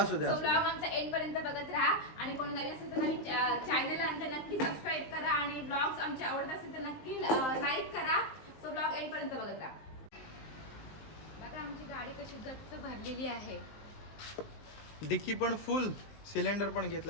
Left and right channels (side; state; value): right; late; 19 ms